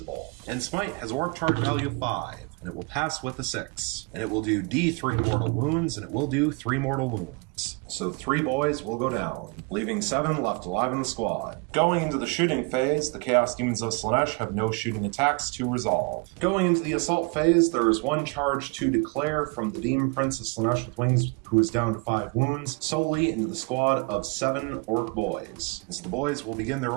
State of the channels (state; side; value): quieter; left; 31.0 dB